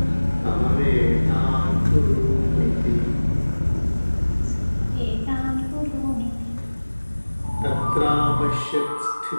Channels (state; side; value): inverted; both; correlation -1.00